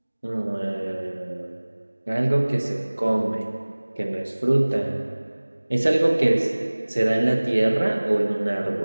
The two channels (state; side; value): inverted; both; correlation -1.00